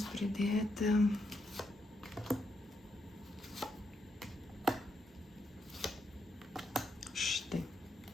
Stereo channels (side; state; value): both; normal; correlation 0.80